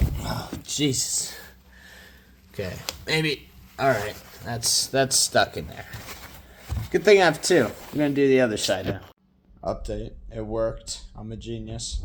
Oh, Jesus. Okay, maybe. All right, that's stuck in there. Good thing I have 2. I'm gonna do the other side now. Update. It worked. I'm a genius.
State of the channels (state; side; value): identical; both; correlation 1.00